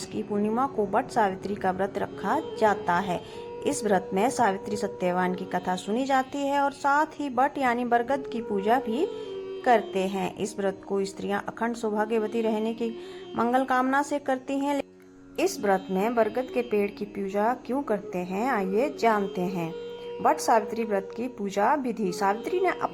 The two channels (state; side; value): identical; both; correlation 1.00